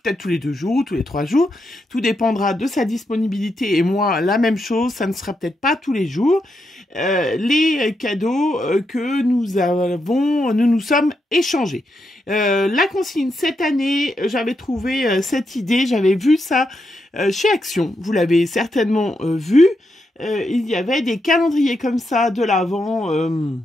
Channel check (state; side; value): normal; both; correlation 0.83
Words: tous les 2 jours ou tous les 3 jours. Tout dépendra de sa disponibilité et moi la même chose, ça ne sera peut-être pas tous les jours. Les cadeaux que nous nous sommes échangés. La consigne cette année, j'avais trouvé cette idée, j'avais vu ça chez Action, vous l'avez certainement vu. Il y avait des calendriers comme ça de l'Avent